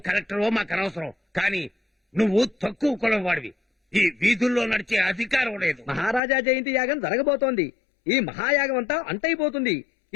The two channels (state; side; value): drops out; right; at 6.2 s